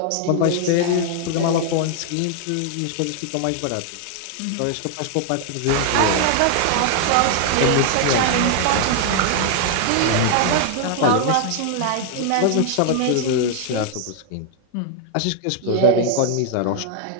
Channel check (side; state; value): both; different; correlation 0.00